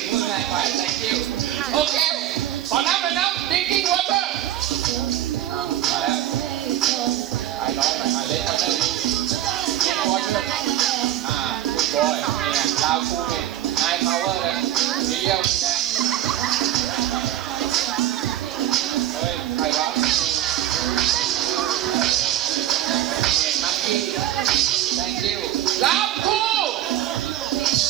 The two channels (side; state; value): left; quieter; 12.6 dB